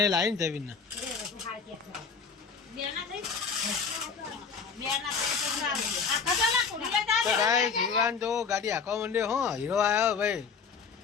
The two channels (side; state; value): right; quieter; 5.7 dB